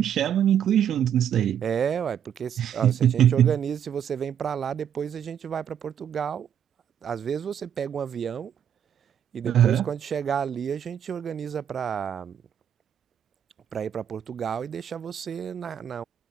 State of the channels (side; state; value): left; quieter; 9.2 dB